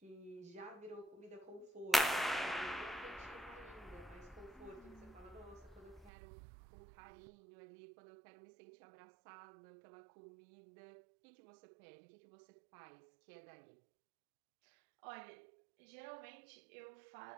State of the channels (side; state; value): left; drops out; at 6.1 s